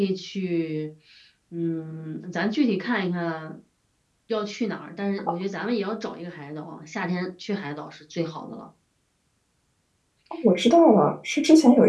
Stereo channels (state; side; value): identical; both; correlation 1.00